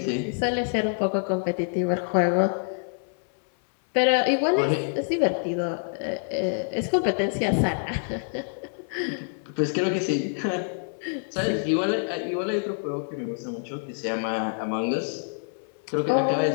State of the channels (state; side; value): silent; right; 61 dB below the other